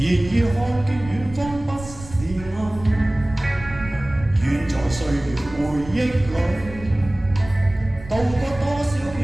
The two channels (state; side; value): noise; right; rumble, 15 dB below the sound